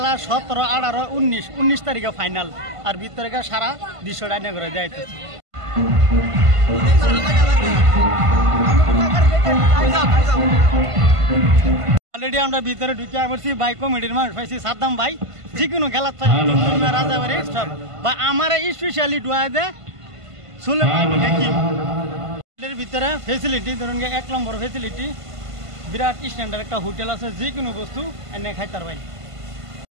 17 18 19 তারিখে ফাইনাল আর ভিতরে সারা 200 টাকা করে যাইতেছি অলরেডি আমরা ভিতরে ঢুকে পড়ছি ভাই কমিটির মানুষ পাইছি সাদ্দাম ভাই যে কোনো খেলা রাজাবাড়ি সব বা আমার স্পেশালি ডুয়া দে সুলেমান হাকিম এর ভিতরে ফেসিলিটি ধরুন 1 নম্বর ফেসিলিটি বিরাট স্ট্যান্ডার্ড একটা হোটেল আছে যে কোনো বস্তু এনে খাইতার ভাই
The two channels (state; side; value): late; left; 1.5 ms